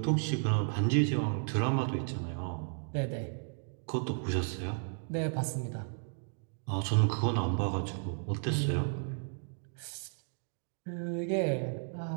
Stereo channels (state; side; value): silent; left; 55 dB below the other